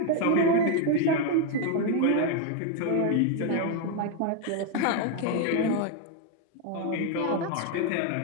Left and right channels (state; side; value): different; both; correlation 0.01